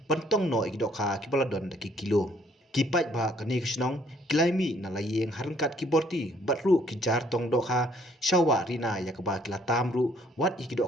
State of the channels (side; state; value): both; normal; correlation 0.63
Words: pentong no ikidok ha kibaladon daki kilo kipai ba kani kisnong kilaimi na layeng harengkat kiborti batru kijar tong dok ha shawa rina yakaba kila tamru wat